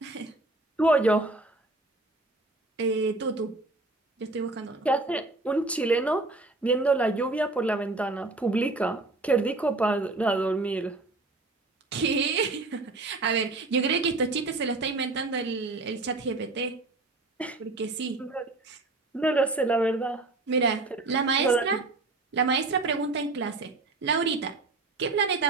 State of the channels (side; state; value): left; quieter; 3.2 dB